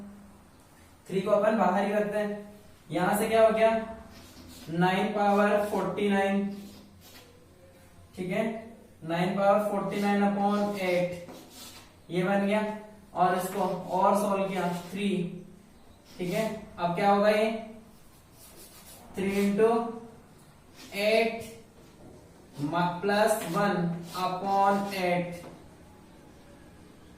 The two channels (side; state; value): both; identical; correlation 1.00